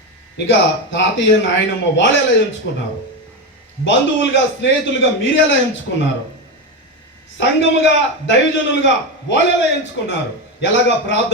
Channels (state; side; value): normal; both; correlation 0.15